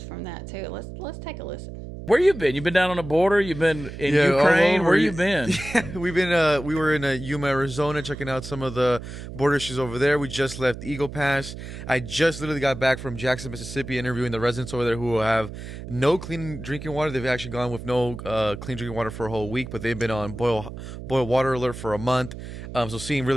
that too. Let's take a listen. Where you been? You been down on the border? You been in Ukraine? Where you been? We were in Yuma, Arizona, checking out some of the border issues over there. We just left Eagle Pass. I just literally got back from Jackson, Mississippi, interviewing the residents over there who have no clean drinking water. They've actually gone with no clean drinking water for a whole week, but they've been on boil water alert for a month. So seeing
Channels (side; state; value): right; noise; hum, 11 dB below the sound